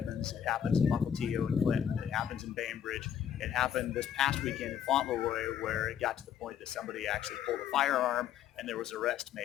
It happens in Mukilteo and Clinton. It happens in Bainbridge. It happened this past weekend in Fauntleroy where it got to the point that somebody actually pulled a firearm and there was arrest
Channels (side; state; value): right; quieter; 9.3 dB